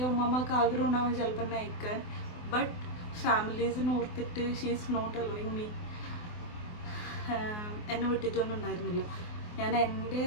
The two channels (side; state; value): right; late; 24 ms